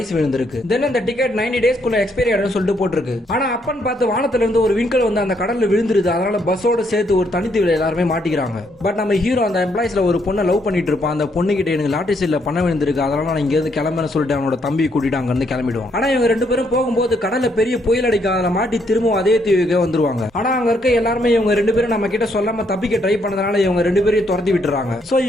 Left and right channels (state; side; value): normal; both; correlation 0.73